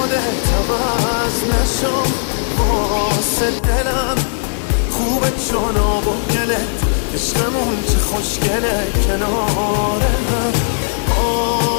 عوض نشو. واسه دلم خوبه چون آب و گلت، عشقمون چه خوشگله کنار هم.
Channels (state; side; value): silent; right; 68 dB below the other